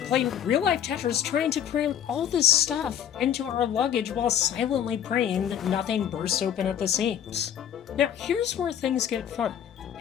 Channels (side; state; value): right; quieter; 9.5 dB